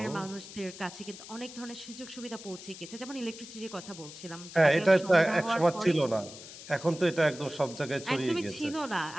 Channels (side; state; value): left; noise; hiss, 14 dB below the sound